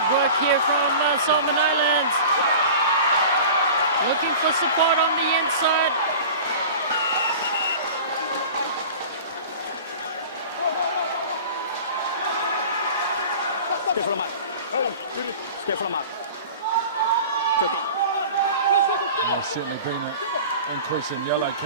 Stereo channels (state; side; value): inverted; both; correlation -0.38